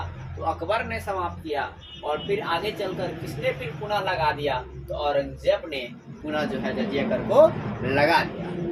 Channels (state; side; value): identical; both; correlation 1.00